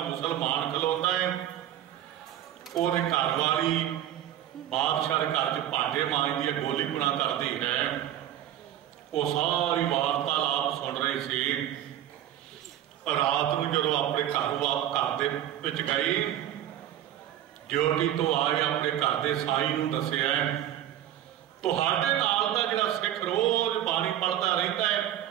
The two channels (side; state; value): left; quieter; 11.7 dB